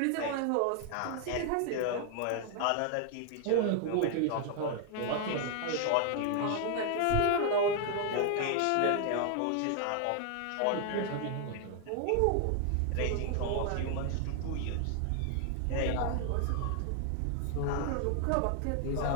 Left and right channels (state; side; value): different; both; correlation 0.00